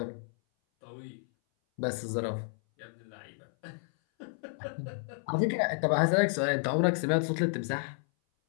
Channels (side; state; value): right; silent; 57 dB below the other